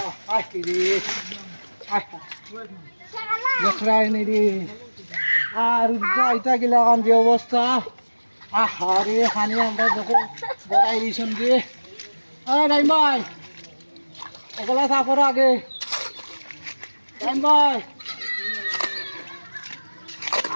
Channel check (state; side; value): inverted; both; correlation -1.00